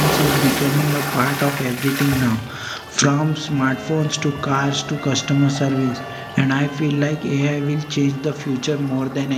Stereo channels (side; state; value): both; identical; correlation 1.00